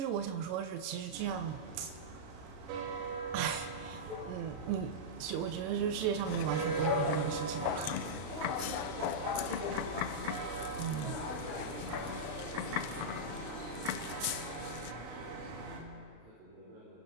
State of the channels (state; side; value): late; left; 32 ms